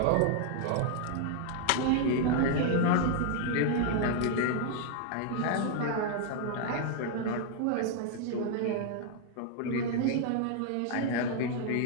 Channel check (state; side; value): different; both; correlation 0.00